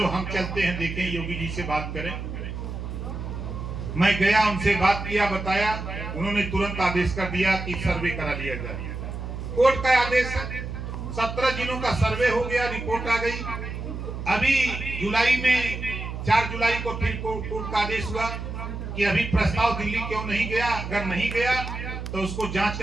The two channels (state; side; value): noise; right; hum, 7 dB below the sound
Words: हम चलते हैं, देखें, योगी जी से बात करें। मैं गया, उनसे बात किया, बताया, उन्होंने तुरंत आदेश कर दिया कि सर्वे करा लिया जाए। कोर्ट का आदेश है, 17 जिलों का सर्वे हो गया, रिपोर्ट आ गई। अभी जुलाई में 4 जुलाई को फिर कोर्ट का आदेश हुआ कि अभी प्रस्ताव दिल्ली क्यों नहीं गया, अगर नहीं गया तो उसको जांच